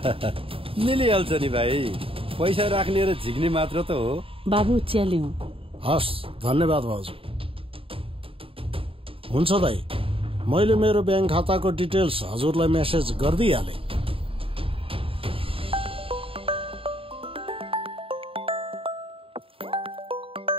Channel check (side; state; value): left; late; 0.27 ms